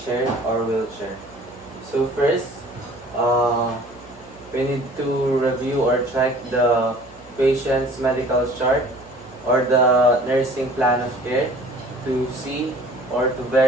chair or wheelchair. So first, uh, we need to review or check the patient's medical chart or the nursing plan of care to see or to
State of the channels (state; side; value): noise; right; hum, 27 dB below the sound